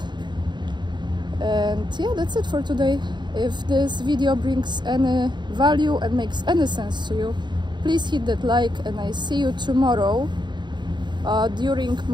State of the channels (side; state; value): left; late; 0.22 ms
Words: And yeah, that's it for today. If this video brings any value and makes any sense to you, please hit that like, and I see you tomorrow during